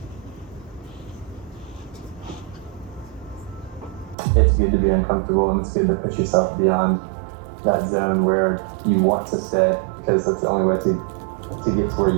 It's good to be uncomfortable, and it's good to push yourself beyond that zone where you want to stay, because that's the only way to get to where you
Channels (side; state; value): left; drops out; at 4.2 s